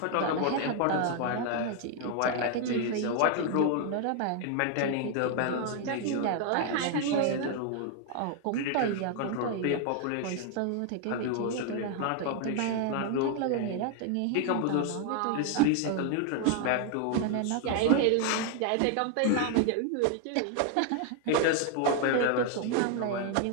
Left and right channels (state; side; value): different; both; correlation 0.00